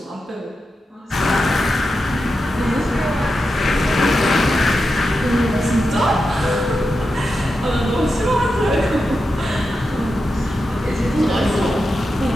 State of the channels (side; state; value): both; normal; correlation 0.89